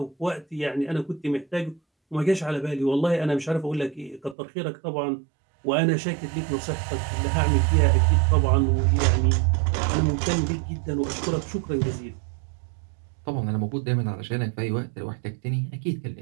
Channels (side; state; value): left; drops out; at 4.4 s